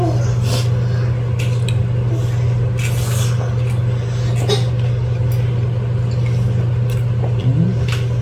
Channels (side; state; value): both; identical; correlation 1.00